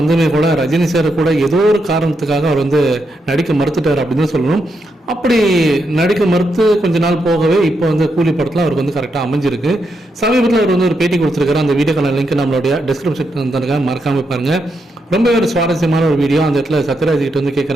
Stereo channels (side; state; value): both; normal; correlation 0.82